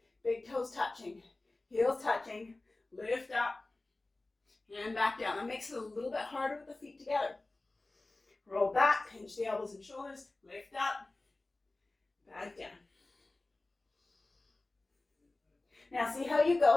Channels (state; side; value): quieter; right; 3.0 dB